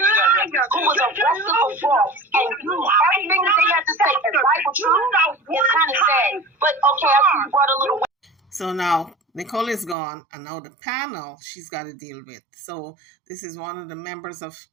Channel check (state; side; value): drops out; left; at 10.0 s